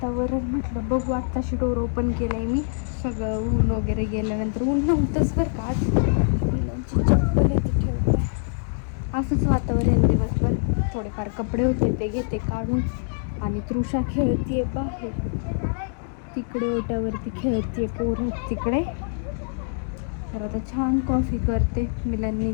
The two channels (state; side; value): silent; right; digital silence